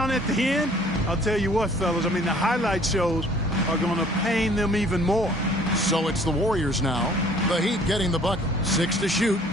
at the end? I'll tell you what, fellas, I mean, the highlight shows are going to pain them even more. So it's the Warriors now. The Heat getting the bucket. 6 to shoot.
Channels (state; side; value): normal; both; correlation 0.55